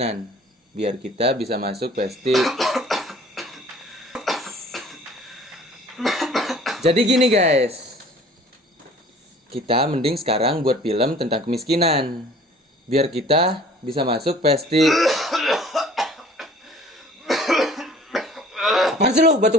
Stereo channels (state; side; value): normal; both; correlation 0.51